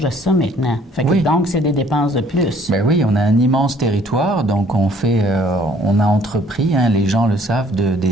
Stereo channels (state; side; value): normal; both; correlation 0.59